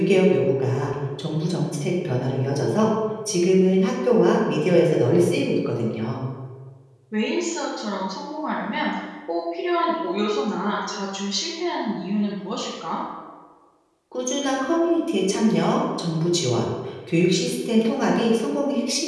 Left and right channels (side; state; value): both; identical; correlation 1.00